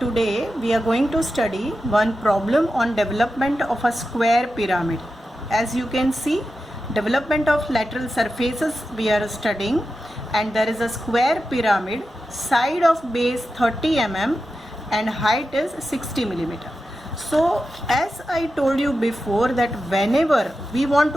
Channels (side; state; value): both; normal; correlation 0.91